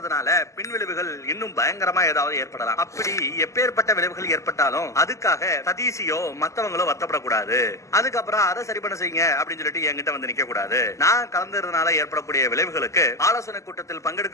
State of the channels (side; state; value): right; late; 0.15 ms